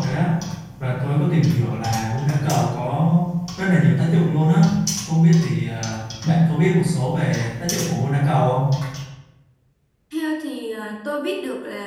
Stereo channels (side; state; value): both; identical; correlation 1.00